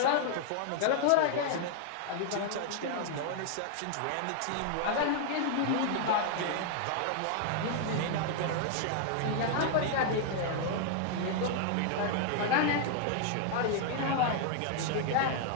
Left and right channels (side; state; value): both; different; correlation 0.00